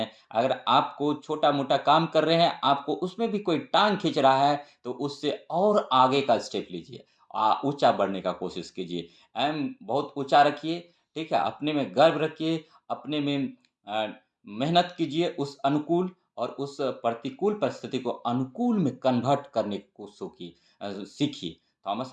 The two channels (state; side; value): identical; both; correlation 1.00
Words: अगर आपको छोटा मोटा काम कर रहे हैं, आपको उसमें भी कोई टांग खींच रहा है, तो उससे और आगे का स्टेप लीजिए, ऊंचा बढ़ने का कोशिश कीजिए। एम बहुत ऊंचा रखिए। ठीक है। अपने में गर्व रखिए, अपने में मेहनत कीजिए उस अनुकूल, और उस प्रतिकूल परिस्थिति को अनुकूल में कन्वर्ट करने को सीखी।